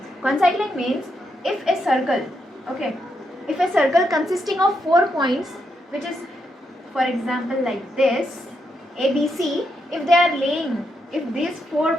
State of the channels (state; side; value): normal; both; correlation 0.81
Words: Concyclic means if a circle, okay, if a circle consisting of 4 points, which is for example like this ABC, if these 4